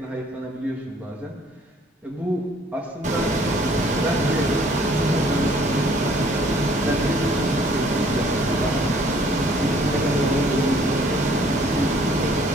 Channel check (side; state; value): both; normal; correlation 0.59